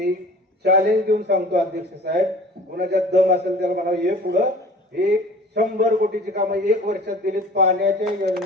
चॅलेंज देऊन सांगतो अध्यक्ष साहेब, कोणाच्यात दम असेल त्याला म्हणा ये पुढं, हे 100 कोटीची कामं 1 वर्षात दिलीत पाण्याच्या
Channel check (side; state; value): both; normal; correlation 0.45